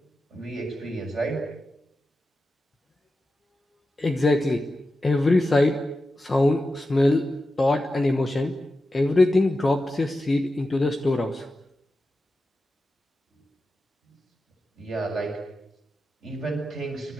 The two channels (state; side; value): normal; both; correlation 0.92